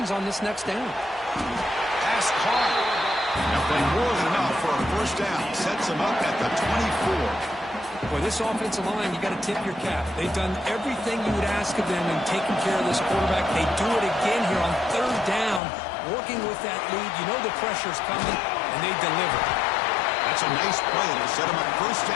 on this next down. Pass caught. Now playing more than enough for a first down. Sets him up at the 24. Boy, this offensive line, you got to tip your cap. They've done everything you would ask of them in taking care of this quarterback. They do it again here on third down, working with that lead. You know the pressure's coming, and they deliver. That's a nice play. It'll set him up first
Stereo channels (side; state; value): right; drops out; at 15.6 s